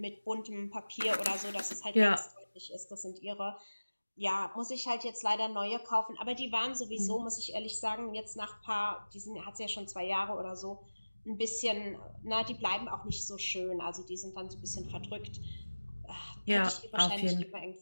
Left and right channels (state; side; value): inverted; both; correlation -1.00